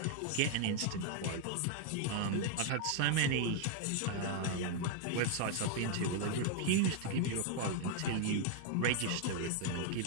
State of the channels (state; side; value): different; both; correlation 0.00